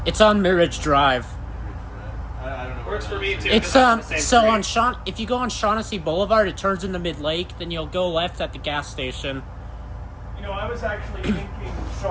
It's on Mirage Drive. I don't know. Works for me too. It's 'cause I'm on the same so street. on if you go on Shaughnessy Boulevard, it turns into Mid Lake. Then you'll go left at the gas station. You know, I was actually thinking,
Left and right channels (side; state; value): both; identical; correlation 1.00